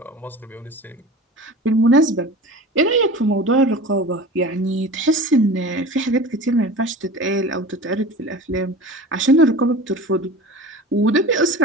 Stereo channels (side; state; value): both; normal; correlation 0.36